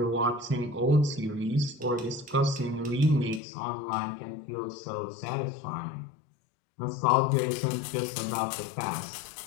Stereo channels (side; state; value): right; drops out; at 3.4 s